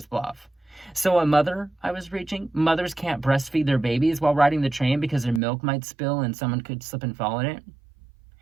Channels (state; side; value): drops out; left; at 5.4 s